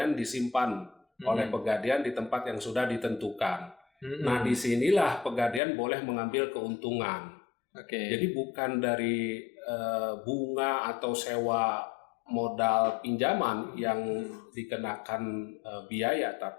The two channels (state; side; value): drops out; right; at 5.6 s